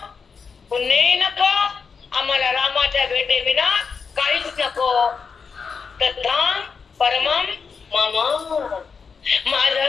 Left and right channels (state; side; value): quieter; right; 5.6 dB